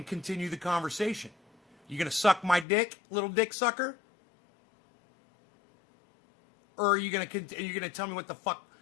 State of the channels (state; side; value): drops out; right; at 2.7 s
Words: continue the conversation. You gonna suck my dick, little dick sucker? Or are you gonna tell me what the fuck